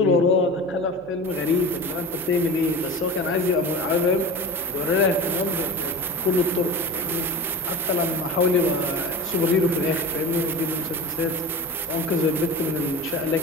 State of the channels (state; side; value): normal; both; correlation 0.31